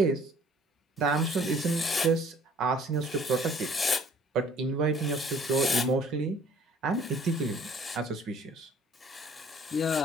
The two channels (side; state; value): both; normal; correlation 0.55